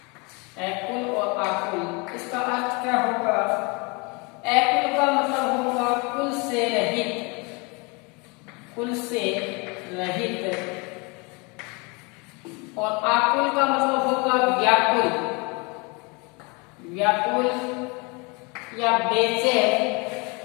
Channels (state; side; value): quieter; right; 29.5 dB